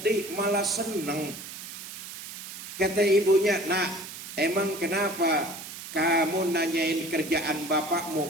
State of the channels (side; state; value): right; noise; hiss, 11 dB below the sound